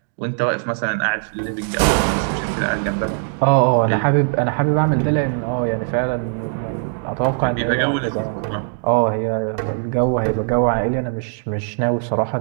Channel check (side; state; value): left; silent; digital silence